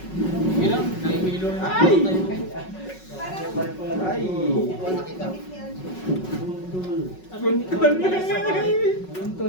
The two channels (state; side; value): late; right; 5.4 ms